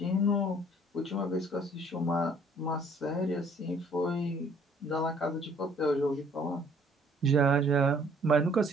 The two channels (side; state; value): both; normal; correlation 0.59